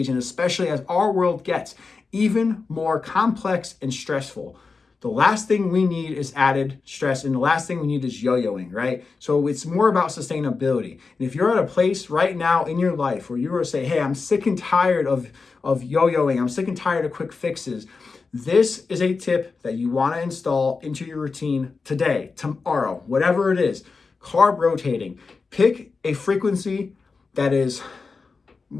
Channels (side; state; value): right; quieter; 4.5 dB